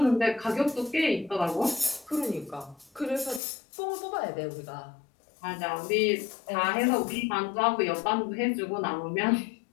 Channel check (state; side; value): drops out; right; at 3.4 s